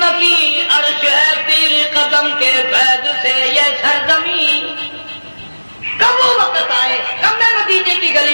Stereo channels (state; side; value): inverted; both; correlation -1.00